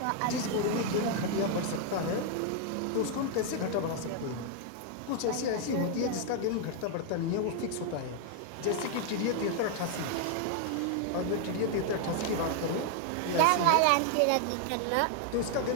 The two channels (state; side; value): different; both; correlation 0.00